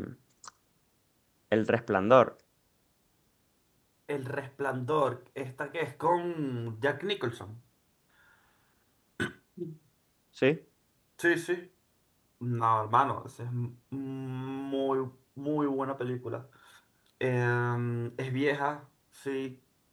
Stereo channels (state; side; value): identical; both; correlation 1.00